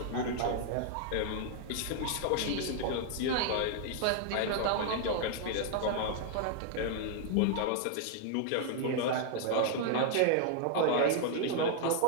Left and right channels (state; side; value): different; both; correlation 0.00